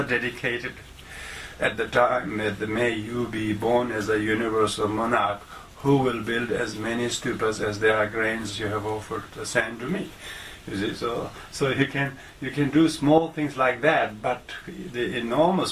dedicated at the time that may you be born as a universal monarch who will build as many stupas as there are grains you have offered the sand to me. You see, so you can do small things like that, but the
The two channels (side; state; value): both; identical; correlation 1.00